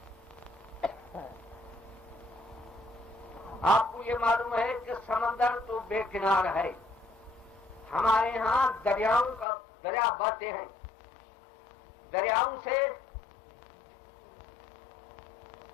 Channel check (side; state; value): right; drops out; at 9.5 s